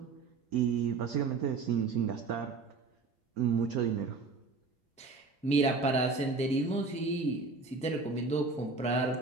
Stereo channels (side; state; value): left; quieter; 4.1 dB